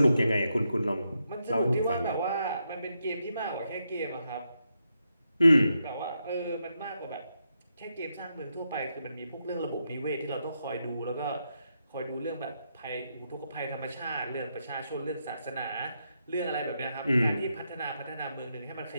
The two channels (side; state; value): both; inverted; correlation -0.83